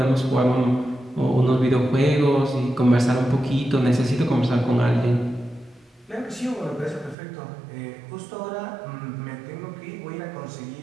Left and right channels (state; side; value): drops out; left; at 7.2 s